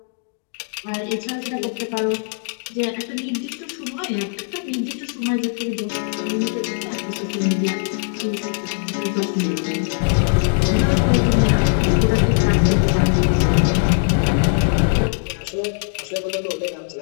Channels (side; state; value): right; silent; digital silence